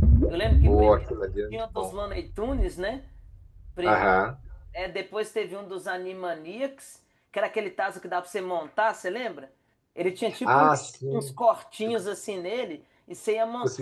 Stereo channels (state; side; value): identical; both; correlation 1.00